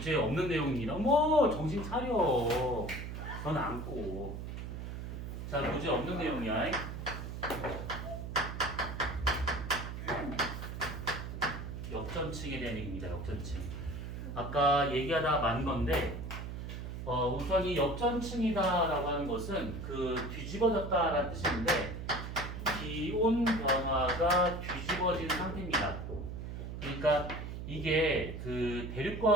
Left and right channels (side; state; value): right; noise; hum, 7 dB below the sound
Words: 없는 내용입니다. 어머, 정신 차려. 넌 안고. 자, 교재에 없는 내용이야. 역전층에 대한 얘기입니다. 역전층. 아까 얘기하다가 만 건데, 우선 이 역전층이다라고 하는 것은 그 뒤집어졌다라는 뜻인데, 기온 변화가 뒤집어진 상태입니다. 그러니까 이게 그